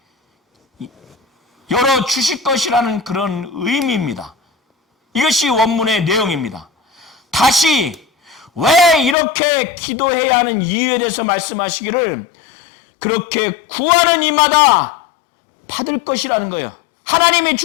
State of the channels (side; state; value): right; drops out; at 9.2 s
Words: 열어 주실 것이라는 그런 의미입니다. 이것이 원문의 내용입니다. 다시 왜 이렇게 기도해야 하는 이유에 대해서 말씀하시기를, 그렇게 구하는 이마다 받을 것이라는 거예요. 하나님이